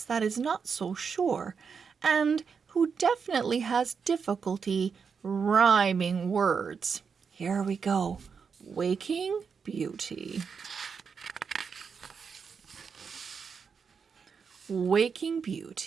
that is not so sure and who definitely has difficulty rhyming words. Here we go. Waking Beauty. Waking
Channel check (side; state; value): left; quieter; 6.0 dB